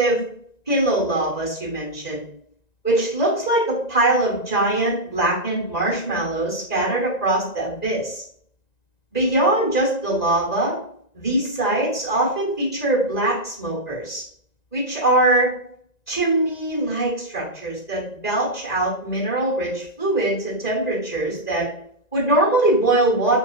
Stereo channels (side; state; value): right; late; 1.9 ms